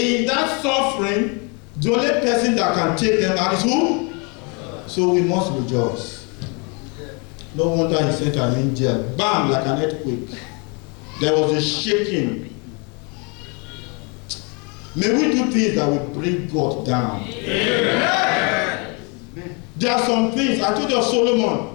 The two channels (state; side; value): quieter; right; 33.2 dB